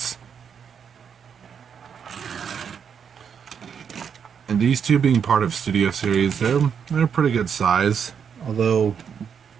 And these two being part of Studio Series, they're a pretty good size. Although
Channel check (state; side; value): quieter; left; 7.2 dB